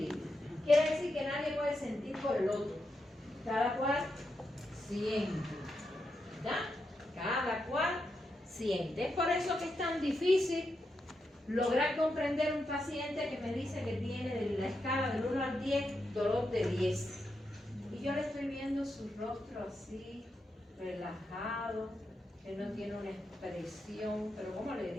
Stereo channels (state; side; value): normal; both; correlation 0.85